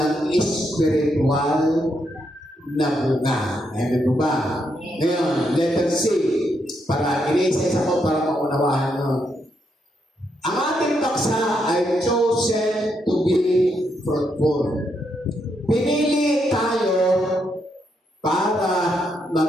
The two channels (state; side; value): normal; both; correlation 0.79